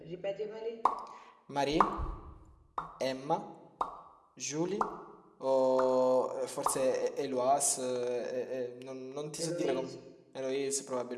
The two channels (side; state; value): both; identical; correlation 1.00